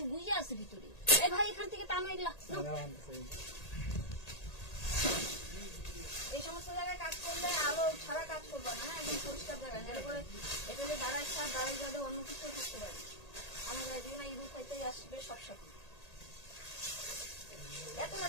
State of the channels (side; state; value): right; late; 1.8 ms